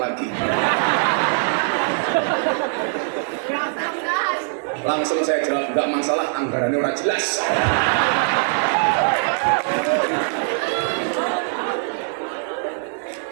Langsung saya jawab, nggak masalah, anggarannya orang jelas.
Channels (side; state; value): left; silent; 56 dB below the other